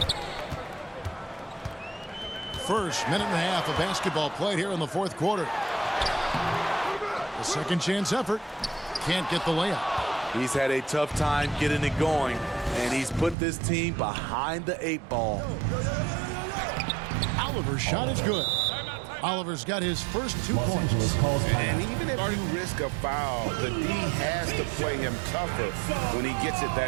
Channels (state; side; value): drops out; left; at 13.4 s